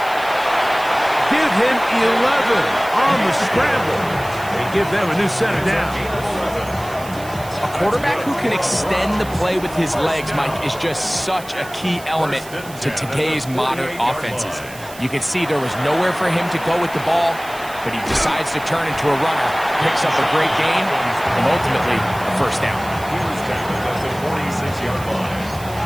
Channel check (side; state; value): right; noise; hiss, 18 dB below the sound